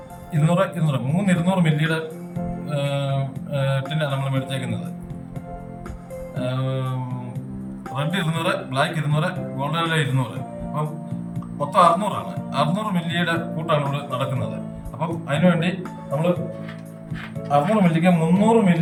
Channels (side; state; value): both; identical; correlation 1.00